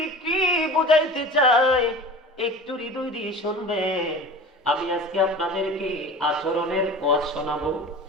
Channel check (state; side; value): normal; both; correlation 0.37